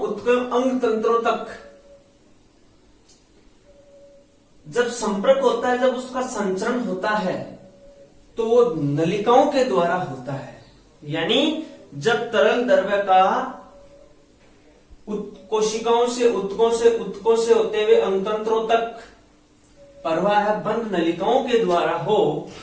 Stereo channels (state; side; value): identical; both; correlation 1.00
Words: उत्तक अंग तंत्रों तक जब संपर्क होता है, जब उसका संचरण होता है तो वो नलिकाओं के द्वारा होता है। यानी जब तरल द्रव्य का कोशिकाओं से उत्तकों से होते हुए अंगतंत्रों तक प्रवाह बंद नलिकाओं के द्वारा हो,